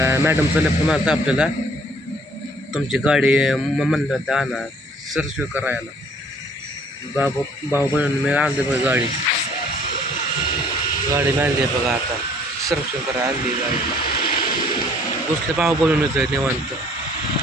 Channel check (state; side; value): normal; both; correlation 0.58